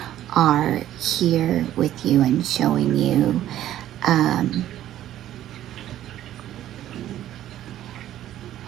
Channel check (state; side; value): quieter; left; 12.5 dB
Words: are here with you and showing you